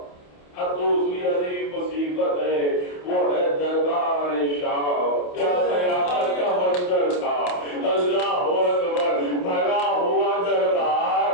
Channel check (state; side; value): late; right; 28 ms